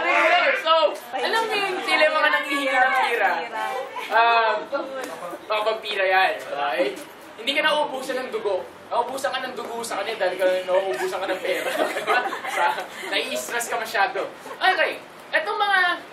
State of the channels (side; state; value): both; identical; correlation 1.00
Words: So, alam mo yung sila yung mga nangihingi ng pira. Mga vampira yan. Okay? Hindi ka nauubusan ng dugo. Nauubusan ka ng dugo sa kanila dahil nauubusan ka ng pera. Nai-stress ka masyado. Okay. Etong mga